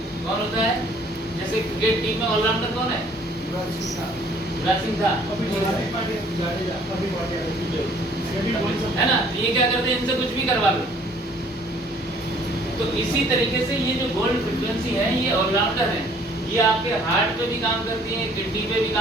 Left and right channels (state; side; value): normal; both; correlation 0.57